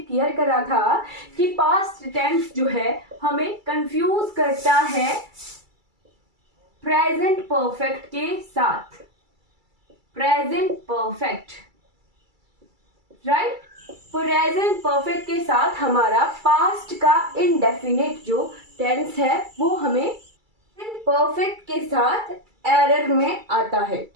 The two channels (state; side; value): late; left; 2.3 ms